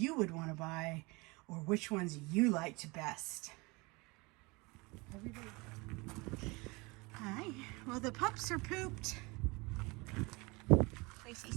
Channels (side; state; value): left; quieter; 25.8 dB